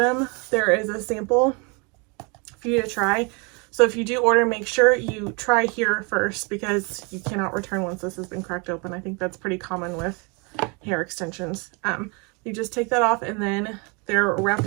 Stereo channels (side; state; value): left; quieter; 31.6 dB